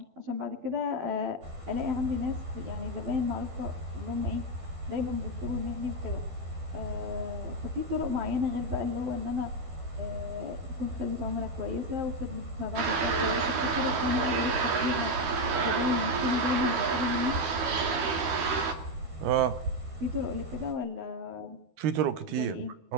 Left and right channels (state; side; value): late; left; 13 ms